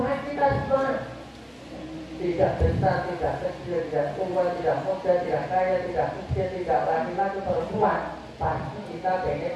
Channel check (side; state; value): both; identical; correlation 1.00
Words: kita semua. Tidak besar, tidak kecil, tidak tua, tidak muda, tidak kaya, tidak miskin, tidak laki-laki, perempuan. Pasti kita pengen